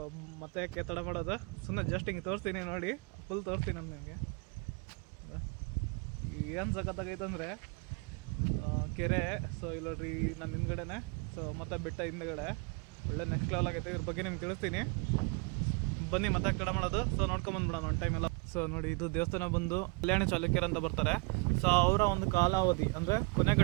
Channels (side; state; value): left; quieter; 31.7 dB